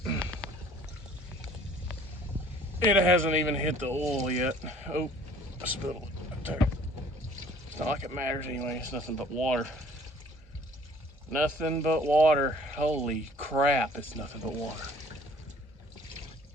It hasn't even hit the oil yet. Oh, I spilled it. It's not like it matters anyway. It's nothing but water. Nothing but water. Holy crap, it's nothing but water.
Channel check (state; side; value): normal; both; correlation 0.54